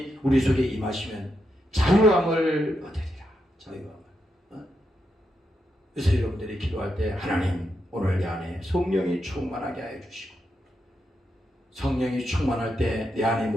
우리 속에 임하시면 자유함을 얻으리라. 자유함을. 그래서 여러분들이 기도할 때 하나님 오늘 내 안에 성령이 충만하게 하여 주시고 성령이 충만할 때 내 안에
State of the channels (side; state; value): both; normal; correlation 0.84